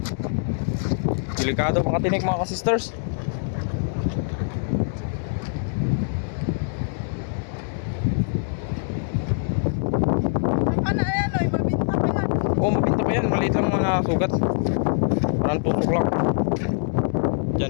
Delikado makatinik mga ka-sisters. Ano yan, oy, mabinta pa yan. Oo, mabinta pa yan. Maliit lang mga sugat. Parang tusok lang.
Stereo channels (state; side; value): silent; right; digital silence